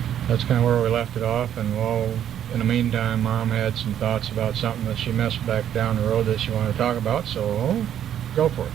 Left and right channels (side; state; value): left; quieter; 10.2 dB